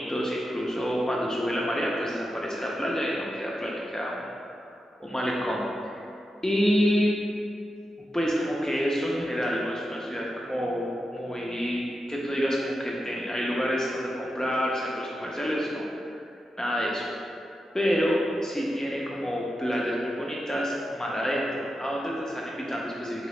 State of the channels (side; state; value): both; normal; correlation 0.88